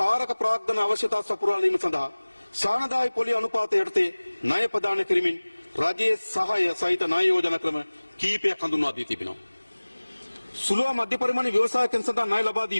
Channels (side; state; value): both; inverted; correlation -1.00